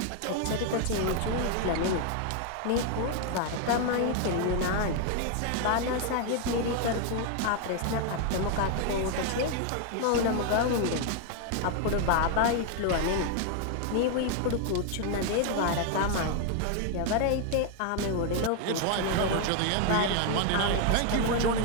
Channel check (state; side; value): different; both; correlation 0.00